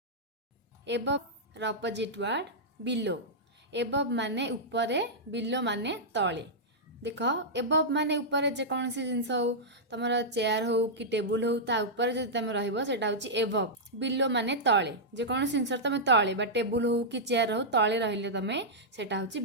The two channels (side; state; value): both; normal; correlation -0.10